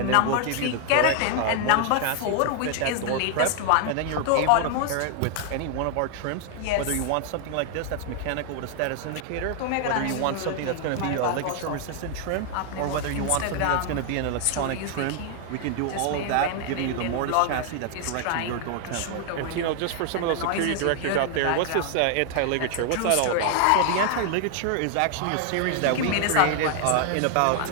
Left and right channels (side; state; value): both; different; correlation 0.00